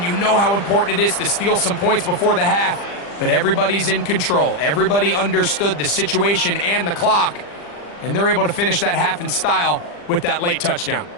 you know how important it is to steal some points before the half. but everybody's in control. Everybody understood the situation and the clock, and they're able to finish that half in style with that late touchdown.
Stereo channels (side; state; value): right; late; 40 ms